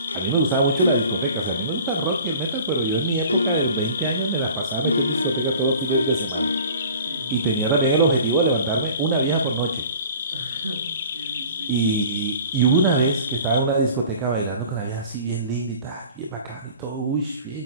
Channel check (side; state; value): both; inverted; correlation -0.45